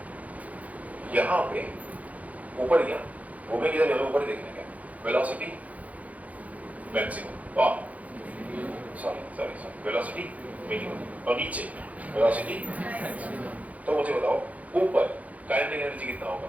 यहाँ पे ऊपर गया, घूमे किधर जाना, ऊपर देखने का velocity maximum, sorry velocity minimum, और नीचे वेलोसिटी। तो मुझे बताओ ऊपर काइनेटिक एनर्जी कितना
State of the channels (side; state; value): left; late; 0.071 ms